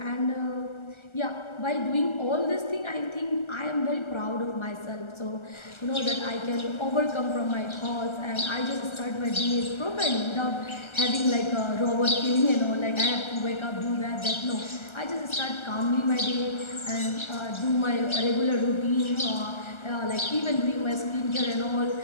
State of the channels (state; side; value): late; right; 1.3 ms